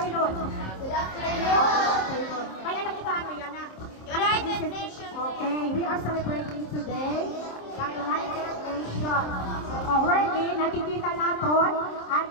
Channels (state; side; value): late; right; 26 ms